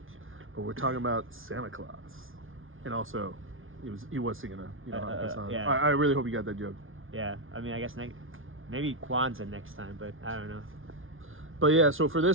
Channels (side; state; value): left; late; 0.58 ms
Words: But we're talking about Santa Claus. And also, he was singing a Hanukkah song. Yeah. I really hope you got that joke. Yeah, I mean, I guess maybe Kwanzaa next time, but I don't know. But yeah, so for